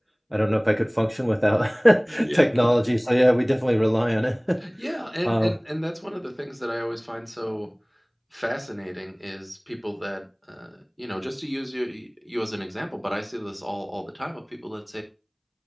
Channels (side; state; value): both; identical; correlation 1.00